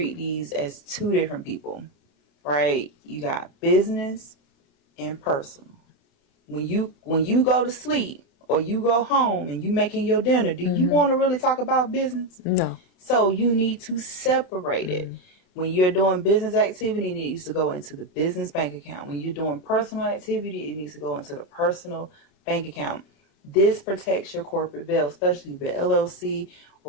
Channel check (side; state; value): right; late; 29 ms